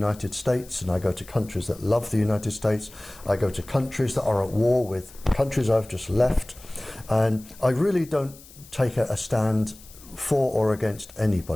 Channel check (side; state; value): left; noise; hiss, 21 dB below the sound